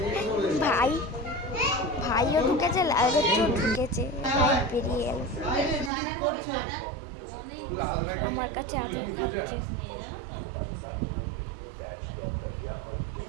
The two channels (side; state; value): left; drops out; at 5.9 s